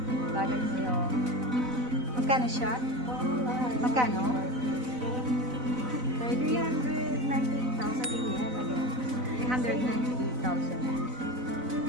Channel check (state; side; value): late; left; 4.0 ms